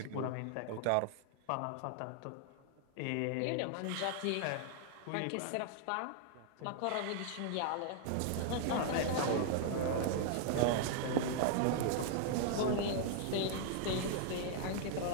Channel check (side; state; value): both; different; correlation 0.00